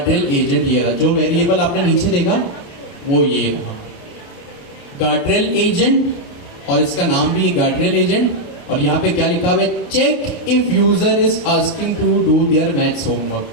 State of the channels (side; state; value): right; late; 28 ms